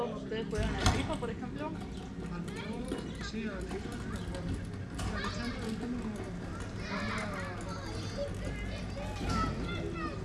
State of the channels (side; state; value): both; identical; correlation 1.00